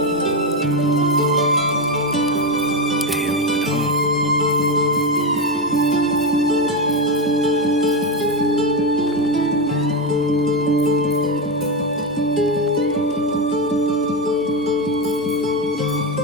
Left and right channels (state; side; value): normal; both; correlation 0.12